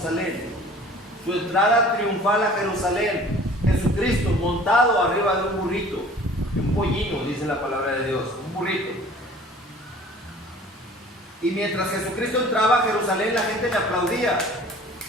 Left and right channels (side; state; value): both; normal; correlation 0.48